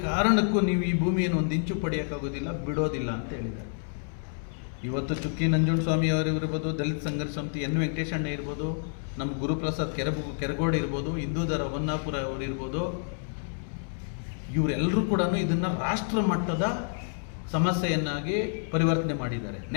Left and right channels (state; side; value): silent; right; digital silence